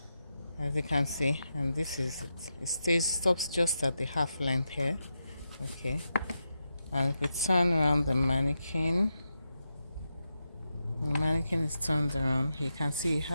as you can see, and this is it. Stops just at the half length here, okay. And if we turn around the mannequin is turned around, you can see it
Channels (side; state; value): both; inverted; correlation -0.87